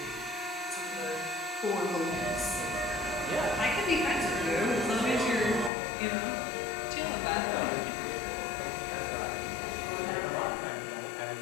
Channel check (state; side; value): drops out; right; at 5.7 s